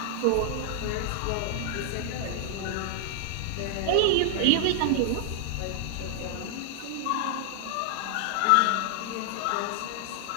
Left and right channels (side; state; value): both; different; correlation 0.00